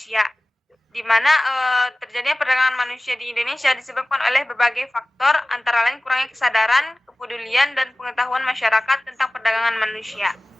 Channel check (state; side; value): normal; both; correlation 0.97